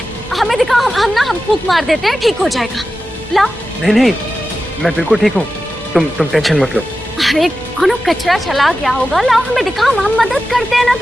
दिखाओ, हम फूंक मार देते हैं, ठीक हो जाएगा। लाओ। नहीं नहीं, मैं बिल्कुल ठीक हूँ, तुम टेंशन मत लो। अरे कोनो कचरा चला गया होगा, लाओ हमें दिखाओ, हम मदद करते हैं ना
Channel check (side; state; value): both; normal; correlation 0.93